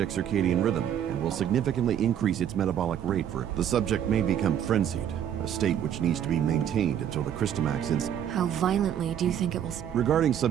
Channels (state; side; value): quieter; left; 9.6 dB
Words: circadian rhythm and will significantly increase its metabolic rate for it. The subject may become frenzied, a state which needs to be maintained until the Christomax is... How violently do you think it will... Regarding